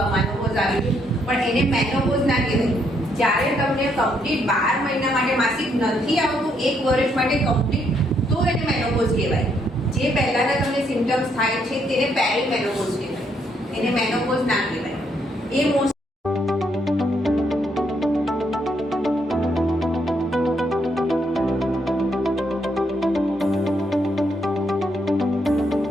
આ મેનોપોઝ આવી ગયું, પણ એને મેનોપોઝ ના કહેવાય. જ્યારે તમને કમ્પ્લીટ 12 મહિના માટે માસિક નથી આવતું, 1 વર્ષ માટે કમ્પ્લીટ, તો એને મેનોપોઝ કહેવાય. જે પહેલાના તમને સિમ્પટમ્સ થાય છે તેને પેરીમેનોપોઝ કહેવાય, એને મેનોપોઝ ના કહેવાય. એ મોસ્ટ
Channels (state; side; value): normal; both; correlation 0.73